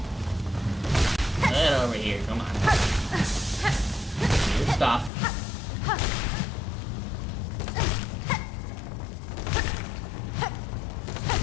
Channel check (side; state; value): right; drops out; at 5.1 s